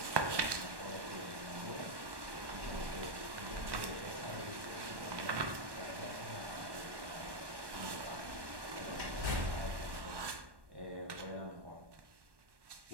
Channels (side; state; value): left; late; 1.1 ms